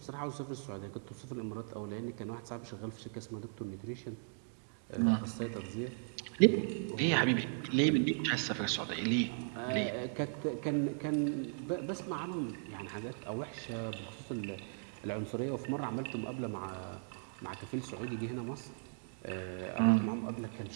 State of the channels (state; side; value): silent; left; digital silence